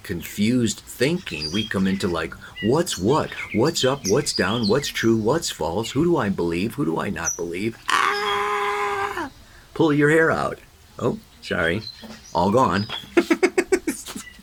thinking. We come into like, what's what? What's up? What's down? What's true? What's false? Who do I believe? Who do I not believe? Ah! Pull your hair out. Oh, sorry. All gone.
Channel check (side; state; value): both; identical; correlation 1.00